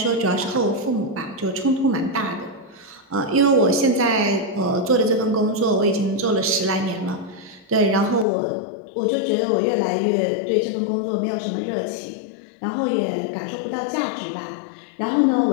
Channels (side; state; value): right; drops out; at 8.2 s